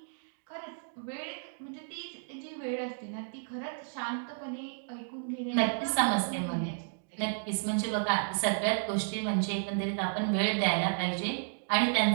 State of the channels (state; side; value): silent; left; digital silence